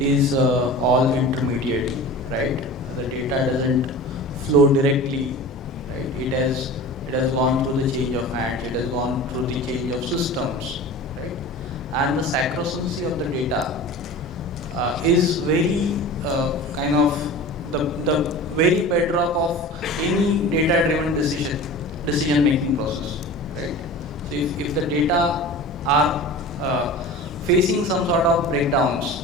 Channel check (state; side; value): normal; both; correlation 0.36